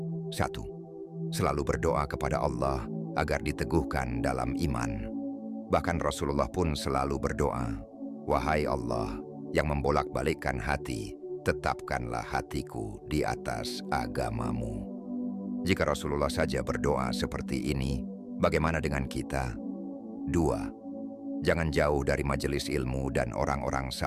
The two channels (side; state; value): both; identical; correlation 1.00